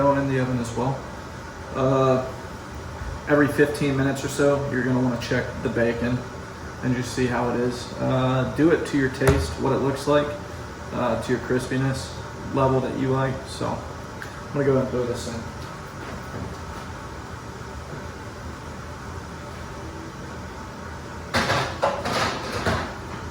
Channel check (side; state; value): both; identical; correlation 1.00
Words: in the oven as well. Every 15 minutes or so, you're gonna wanna check the bacon and just see how it is. Do it to your taste, what it looks like, to your crispiness level that you like. So I'm gonna go ahead and throw this in.